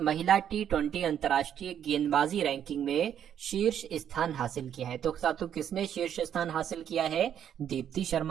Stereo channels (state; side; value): quieter; left; 9.4 dB